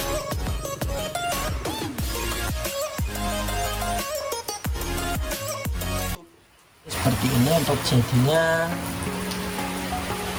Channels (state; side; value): identical; both; correlation 1.00